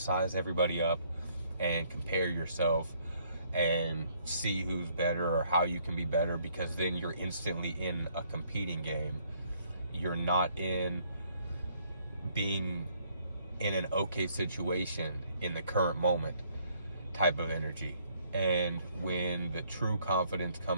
everybody up and compare yourself and see who's better or how you can be better, because then you're instantly in a competing game. You're not in being in an okay situation in the current moment type of energy. And when the true confidence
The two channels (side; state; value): both; inverted; correlation -0.67